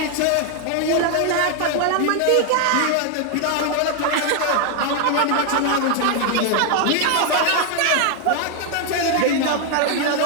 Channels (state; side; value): different; both; correlation 0.00